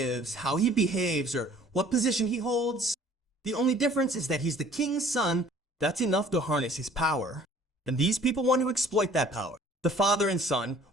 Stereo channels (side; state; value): both; normal; correlation 0.54